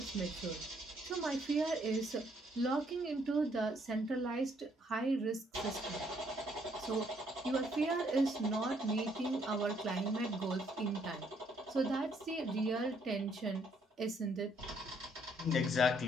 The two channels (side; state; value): both; normal; correlation 0.68